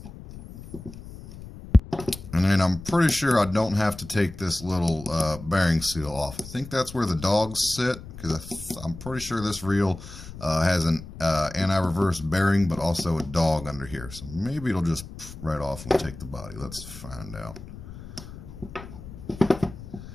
And then I'm pretty sure I don't have to take this little bearing seal off. I think that's where the dogs sit, because I'm pretty sure this reel has an anti-reverse bearing, but also a dog under here. So maybe it'll just right off when we take the body. Let's find out.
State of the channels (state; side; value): noise; left; rumble, 14 dB below the sound